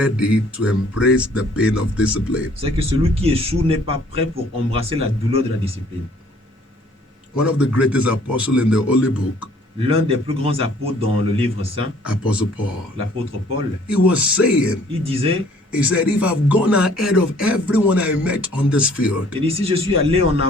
to embrace the pain of discipline. c'est que celui qui échoue n'est pas prêt pour embrasser la douleur de la discipline. One of the greatest apostles in the Holy Book, L'un des plus grands apôtres dans le livre saint, Apostle Paul, l'apôtre Paul, he was saying, il disait, he said, if I've gone ahead of everyone I met on this field, il dit, si je suis allé en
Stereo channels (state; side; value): normal; both; correlation 0.58